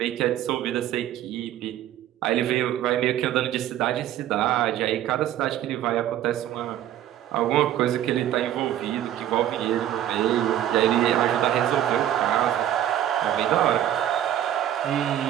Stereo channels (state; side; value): quieter; left; 11.8 dB